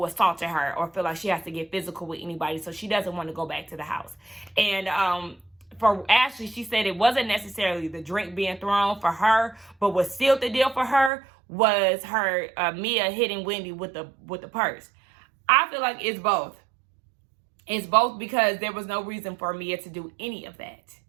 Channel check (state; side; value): drops out; left; at 11.1 s